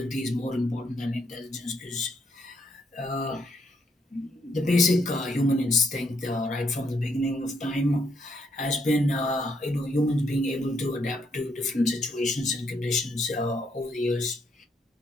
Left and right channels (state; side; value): normal; both; correlation 0.74